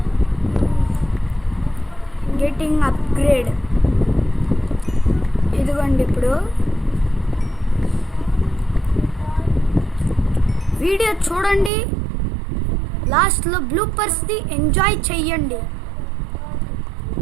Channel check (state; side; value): drops out; left; at 11.7 s